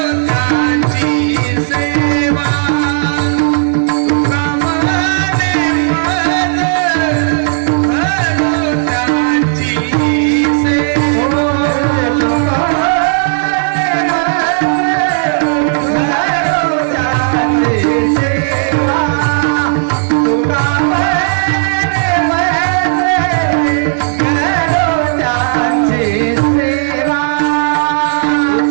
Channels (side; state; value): left; silent; digital silence